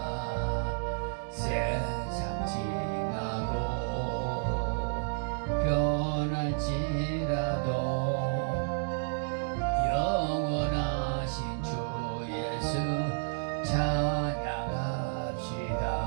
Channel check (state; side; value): silent; left; digital silence